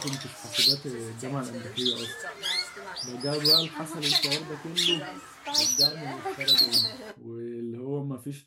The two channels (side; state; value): both; identical; correlation 1.00